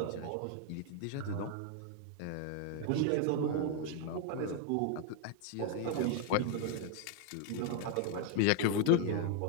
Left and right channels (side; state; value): both; different; correlation 0.00